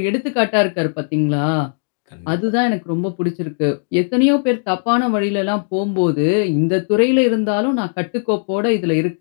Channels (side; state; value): right; silent; digital silence